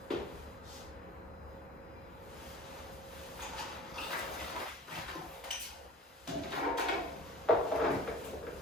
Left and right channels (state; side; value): normal; both; correlation 0.42